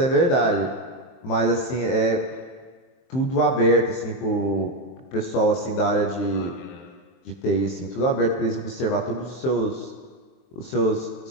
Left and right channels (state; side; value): late; right; 23 ms